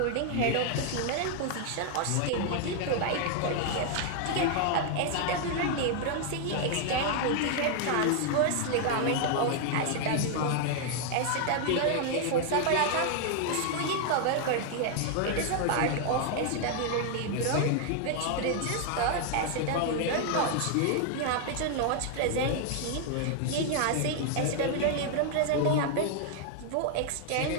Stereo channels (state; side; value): different; both; correlation 0.00